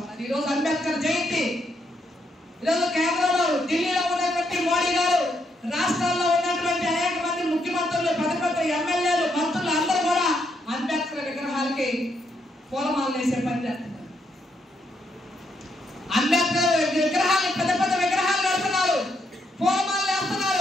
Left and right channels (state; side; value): normal; both; correlation 0.77